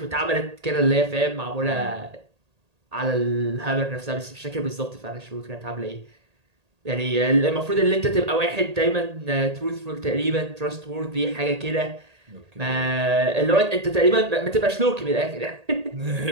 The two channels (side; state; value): left; late; 1.8 ms